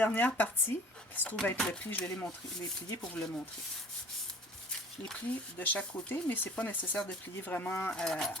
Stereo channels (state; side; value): normal; both; correlation 0.48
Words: partie, qui se trouve être le pli, je vais les plier pour vous le montrer. Je les plie de chaque côté, mais c'est pas nécessaire de plier vraiment à